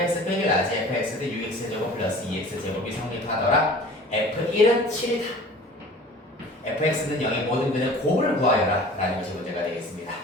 빼기 라지 fx 대 6x제곱 플러스 2x제곱이 성립하더라. f1은 7이다. fx는 0의 모든 근의 곱을 구하여라 라는 것이 문제가 되겠습니다.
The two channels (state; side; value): normal; both; correlation 0.44